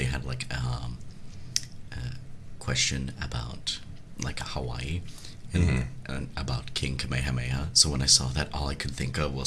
had like a question about like Hawaii and about King Kamehameha. So when I saw that, all I could think of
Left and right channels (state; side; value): identical; both; correlation 1.00